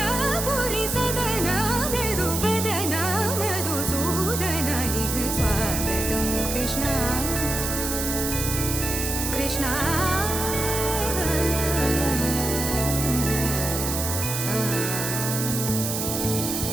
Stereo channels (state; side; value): noise; right; hiss, 3 dB below the sound